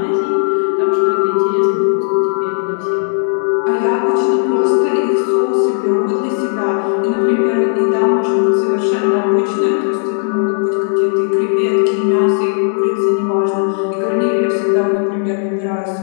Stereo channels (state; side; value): silent; right; digital silence